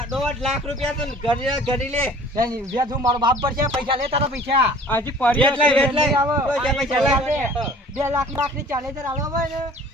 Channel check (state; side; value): normal; both; correlation 0.49